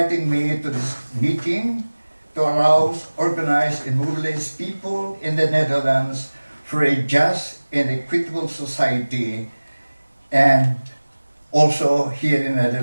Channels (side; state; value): both; inverted; correlation -1.00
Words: me to this meeting to arouse, organize, and mobilize people in the Netherlands for a just and equitable society, and also here in the